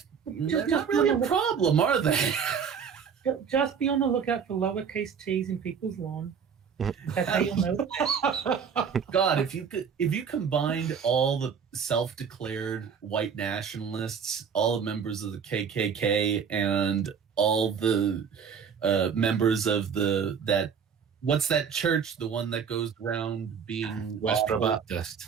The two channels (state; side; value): quieter; left; 6.9 dB